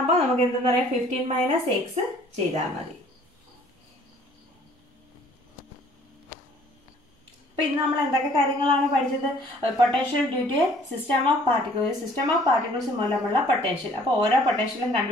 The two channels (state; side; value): normal; both; correlation 0.57